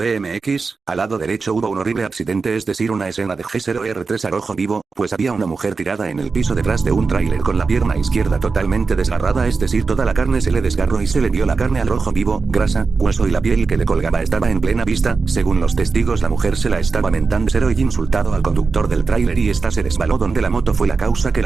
al lado derecho hubo un horrible accidente, es decir una escena de G0R3 a rojo vivo, pues había una mujer tirada en el piso detrás de un tráiler con la pierna izquierda totalmente desgarrada, es decir toda la carne se le desgarró y se le vio la carne al rojo vivo, grasa, hueso y la piel que le colgaba estaba en plena vista. Según los testigos la mujer se la estaba mentando cero y insultado al conductor del tráiler y esta se resbaló donde la moto fue la causa que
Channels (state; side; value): quieter; left; 4.5 dB